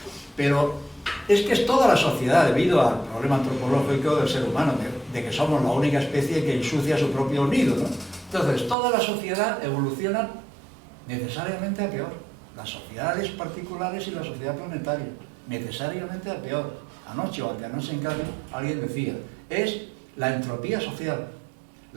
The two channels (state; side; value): drops out; left; at 8.8 s